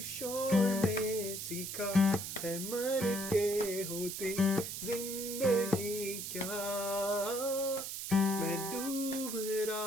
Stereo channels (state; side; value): noise; right; hiss, 6 dB below the sound